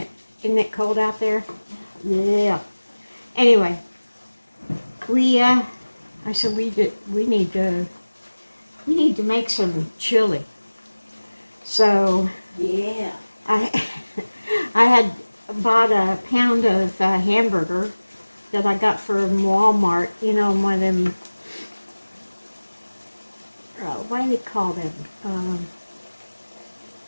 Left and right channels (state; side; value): inverted; both; correlation -1.00